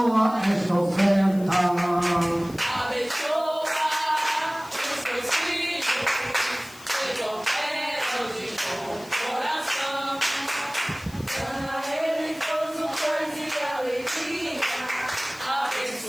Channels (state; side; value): noise; left; hiss, 21 dB below the sound